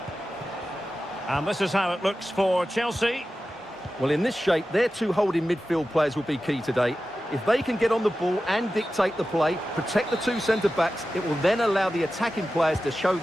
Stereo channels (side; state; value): both; normal; correlation 0.93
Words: And this is how it looks for Chelsea. Well, in this shape, their two holding midfield players will be key today. If they can get on the ball and dictate the play, protect the two centre-backs, it will then allow the attacking players to show